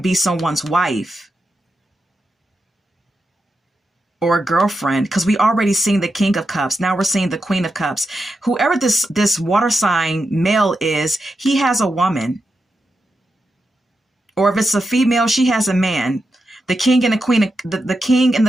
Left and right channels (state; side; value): normal; both; correlation 0.87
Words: be someone's wife or a girlfriend, because we already seen the King of Cups. Now we're seeing the Queen of Cups. Whoever this water sign male is, he has a woman. Or if it's a female, she has a man. The King and the Queen, the King and